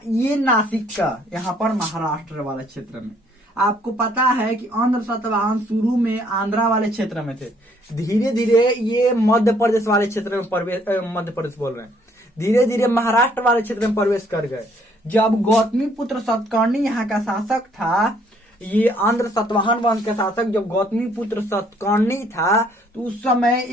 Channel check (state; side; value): normal; both; correlation 0.64